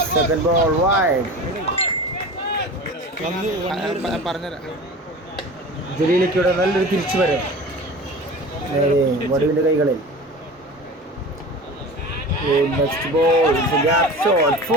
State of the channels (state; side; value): normal; both; correlation 0.36